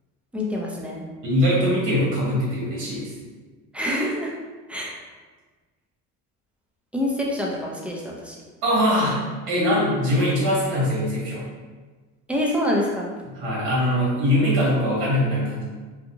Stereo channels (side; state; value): both; normal; correlation 0.24